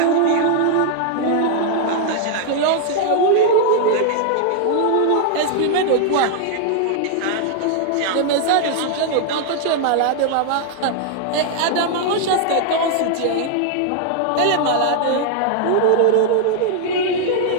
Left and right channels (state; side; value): different; both; correlation 0.00